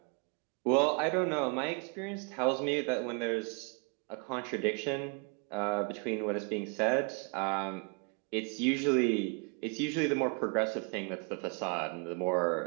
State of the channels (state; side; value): quieter; left; 35.0 dB